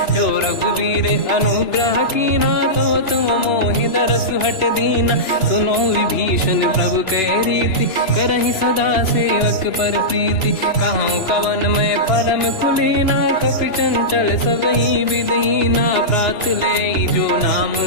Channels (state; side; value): late; right; 3.0 ms